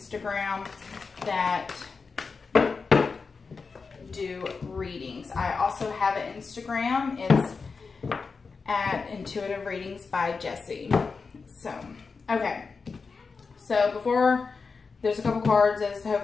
that do readings. I also have an Instagram. It's at Intuitive Readings by Jessie. So, okay. So before, there's a couple cards, as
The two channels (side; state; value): right; quieter; 4.8 dB